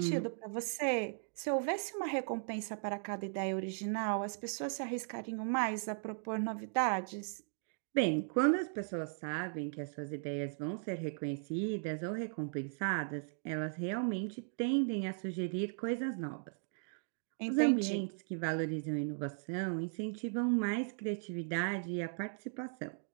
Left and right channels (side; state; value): left; silent; digital silence